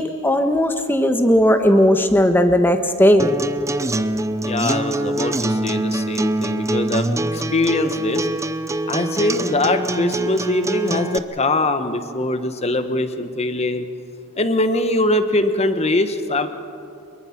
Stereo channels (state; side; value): normal; both; correlation 0.62